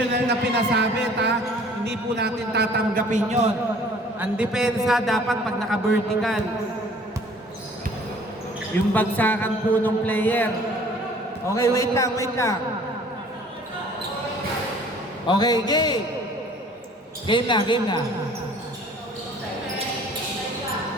na pinasabit ha. Hindi po natin tatanggapin yon. Ang depensa dapat pag naka-vertical. Yung bagsakan po ng player. Okay, wait lang. Okay, game. Game na.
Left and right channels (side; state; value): both; normal; correlation 0.52